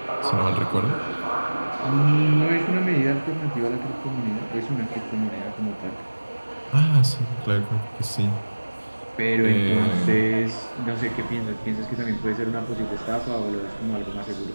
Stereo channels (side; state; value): both; inverted; correlation -1.00